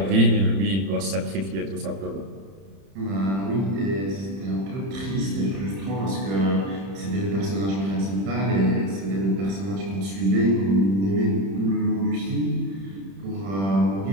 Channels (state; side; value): late; left; 31 ms